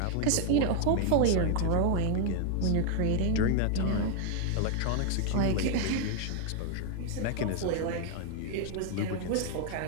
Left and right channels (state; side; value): different; both; correlation 0.00